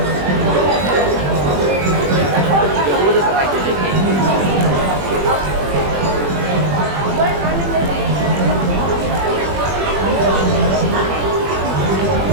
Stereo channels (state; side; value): late; left; 21 ms